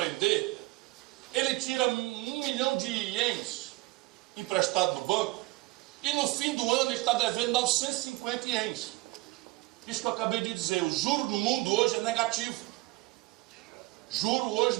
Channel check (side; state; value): left; quieter; 21.2 dB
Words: ele tira 1 milhão de ienes emprestado no banco e no fim do ano ele está devendo 950 ienes. Isso que eu acabei de dizer, o juro no mundo hoje é negativo. Juro hoje